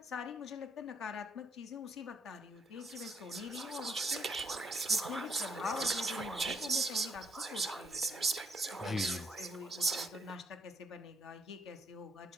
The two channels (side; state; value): both; normal; correlation 0.70